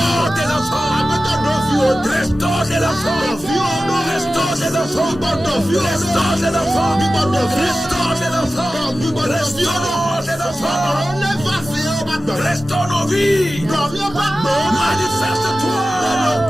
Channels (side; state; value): both; normal; correlation 0.95